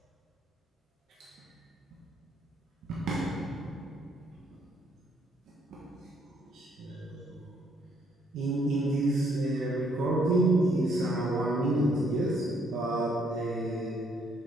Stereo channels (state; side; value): normal; both; correlation 0.68